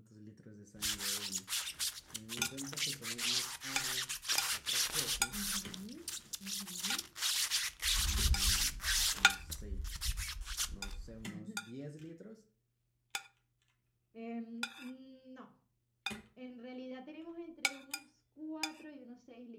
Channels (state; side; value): identical; both; correlation 1.00